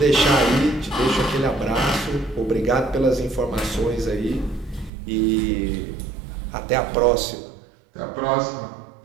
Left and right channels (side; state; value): left; drops out; at 4.9 s